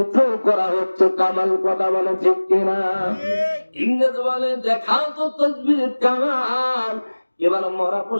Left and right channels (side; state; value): both; inverted; correlation -1.00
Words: করা হচ্ছে কামাল। কথা বলে ঠিক কিনা? ইংরেজ বলে, দেখাও তো তাসবিহের কামাল। এবার মরা